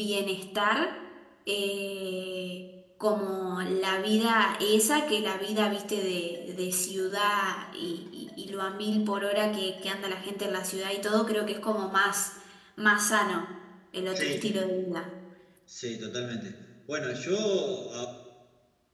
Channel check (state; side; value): identical; both; correlation 1.00